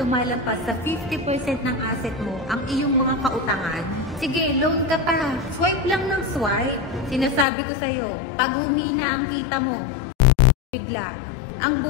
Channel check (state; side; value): drops out; right; at 7.5 s